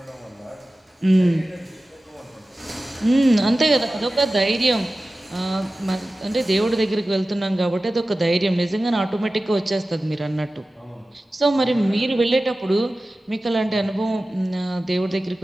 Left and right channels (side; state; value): both; normal; correlation 0.96